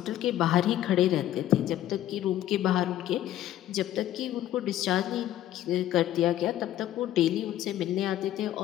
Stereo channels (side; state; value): right; quieter; 12.8 dB